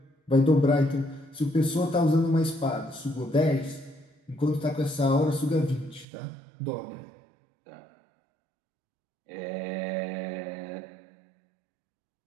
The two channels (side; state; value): left; drops out; at 6.1 s